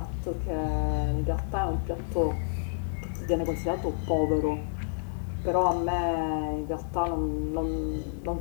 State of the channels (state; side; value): silent; right; digital silence